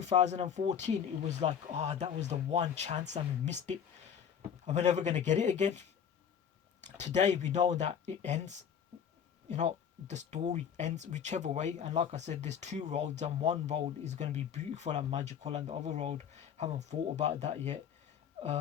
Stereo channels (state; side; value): quieter; right; 8.1 dB